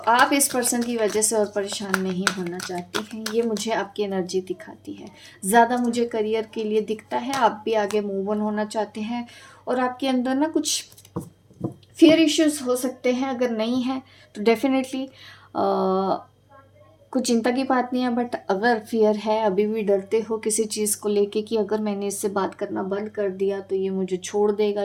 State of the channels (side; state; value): both; identical; correlation 1.00